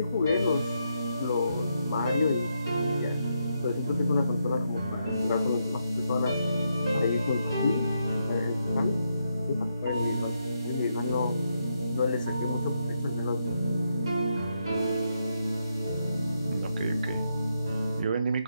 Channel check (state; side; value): inverted; both; correlation -0.81